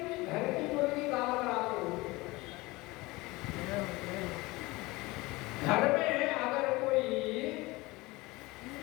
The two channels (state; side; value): quieter; right; 21.9 dB